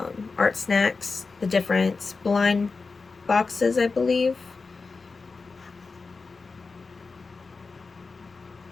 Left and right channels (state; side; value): quieter; right; 4.3 dB